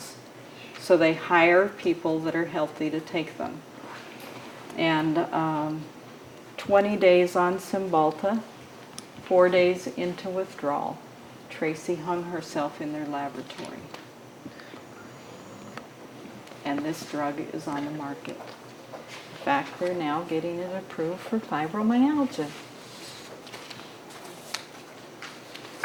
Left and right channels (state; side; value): identical; both; correlation 1.00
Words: So they hire people that are healthy to take them. And 20 days on Cymbalta, 4 days into withdrawal. Tracy hung herself in their laboratory. And this drug is on the market. In fact, they're now getting it approved for fibromyalgia.